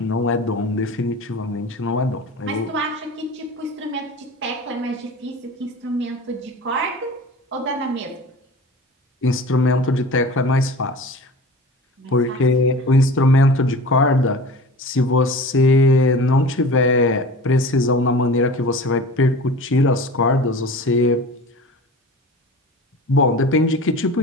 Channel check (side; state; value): both; normal; correlation 0.37